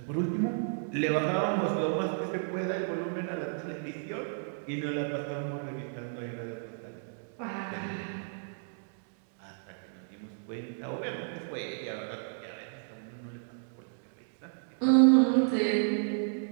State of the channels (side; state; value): left; silent; digital silence